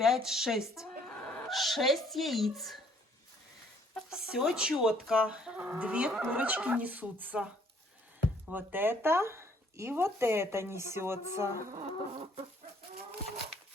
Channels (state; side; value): normal; both; correlation 0.62